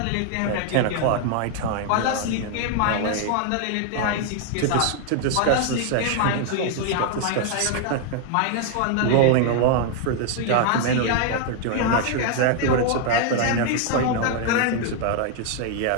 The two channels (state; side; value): different; both; correlation 0.00